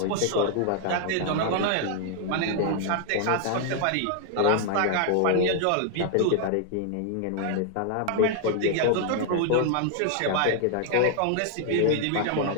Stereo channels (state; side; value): different; both; correlation 0.00